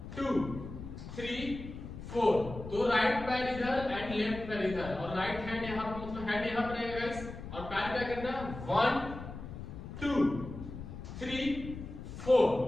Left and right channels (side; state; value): left; noise; rumble, 10 dB below the sound